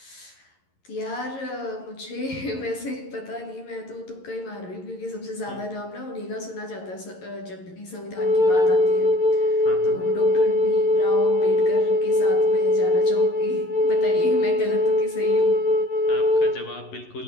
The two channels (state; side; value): late; right; 11 ms